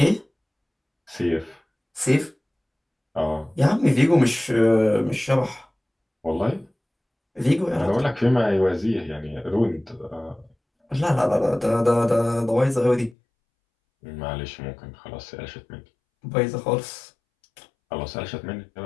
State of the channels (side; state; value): right; drops out; at 13.2 s